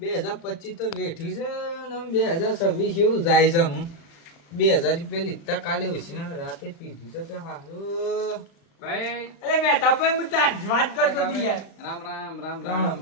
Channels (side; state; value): right; late; 35 ms